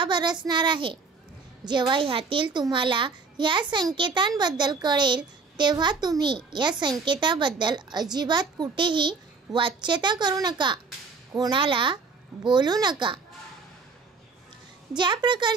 बरसणार आहे। जेव्हा ह्यातील तुम्हाला या संकेतांबद्दल कळेल तेव्हा तुम्ही या संकेताबद्दल अजिबात कुठेही वाच्यता करू नका, कोणाला बोलू नका। ज्या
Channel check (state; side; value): quieter; left; 4.6 dB